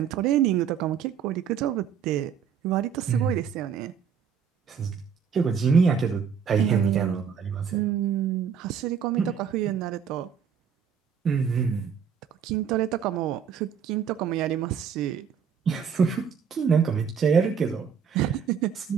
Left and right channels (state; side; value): quieter; left; 7.3 dB